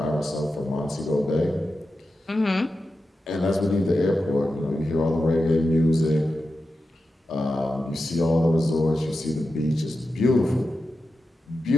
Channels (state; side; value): normal; both; correlation 0.90